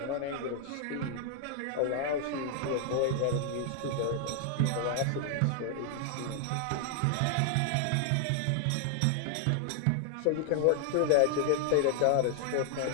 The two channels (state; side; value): different; both; correlation 0.00